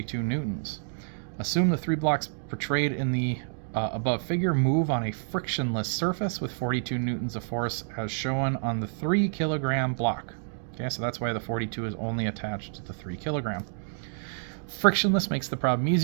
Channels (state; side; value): silent; left; digital silence